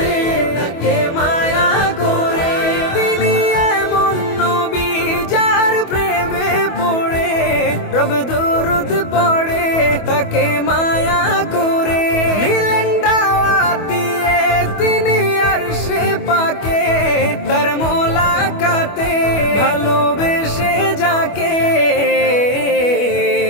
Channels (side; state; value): right; late; 25 ms